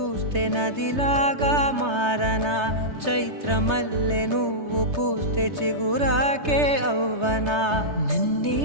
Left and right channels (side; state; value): left; late; 3.3 ms